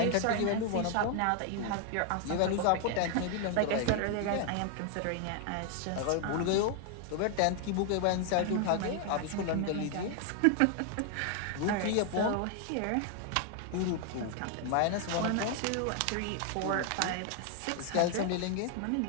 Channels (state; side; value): different; both; correlation 0.00